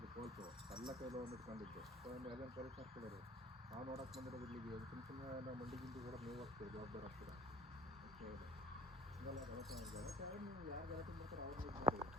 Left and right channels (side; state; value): both; normal; correlation 0.45